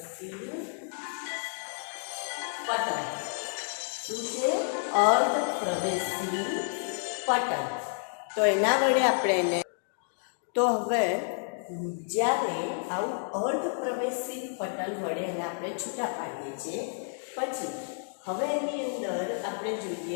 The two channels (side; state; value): right; silent; digital silence